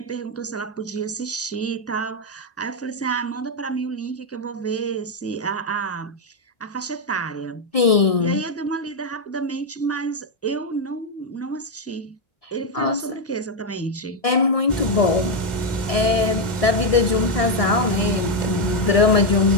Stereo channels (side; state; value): right; late; 1.7 ms